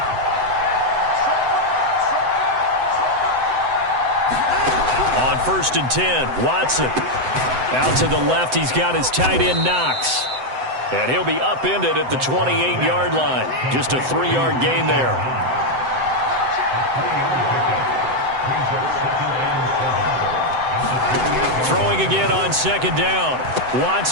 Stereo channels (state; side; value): late; left; 7.8 ms